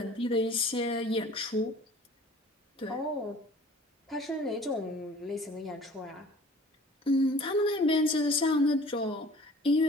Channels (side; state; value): both; normal; correlation 0.49